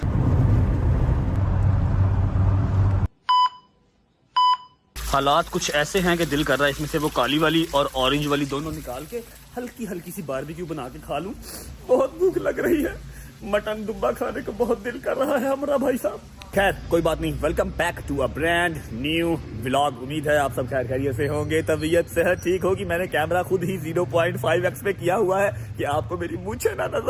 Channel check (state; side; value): identical; both; correlation 1.00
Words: हालात कुछ ऐसे हैं कि दिल कर रहा है इसमें से वो काली वाली और ऑरेंज वाली दोनों निकाल के हल्की हल्की सी बारबेक्यू बना के खा लूं। बहुत भूख लग रही है, मटन दुब्बा खाने को बहुत दिल कर रहा है हमारा भाई साहब। खैर कोई बात नहीं, welcome back to a brand new vlog. उम्मीद है आप सब खैर खैरियत से होंगे, तबीयत सेहत ठीक होगी। मैंने कैमरा खुद ही 0.5x पे किया हुआ है कि आपको मेरी मूंछें ना